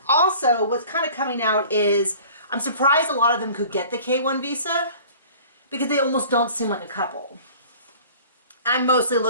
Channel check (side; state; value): both; inverted; correlation -0.46